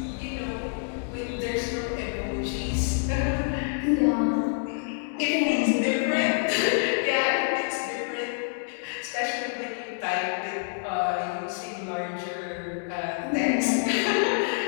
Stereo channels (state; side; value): silent; right; 60 dB below the other